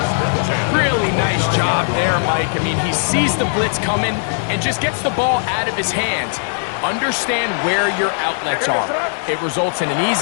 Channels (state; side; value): silent; right; 59 dB below the other